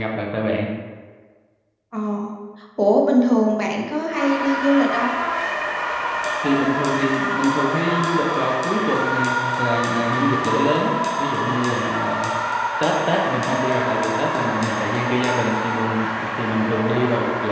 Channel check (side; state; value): both; identical; correlation 1.00